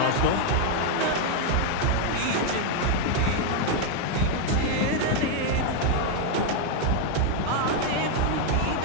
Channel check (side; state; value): both; different; correlation 0.00